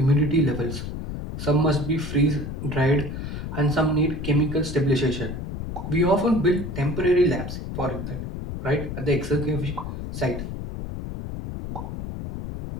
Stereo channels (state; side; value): noise; left; rumble, 7 dB below the sound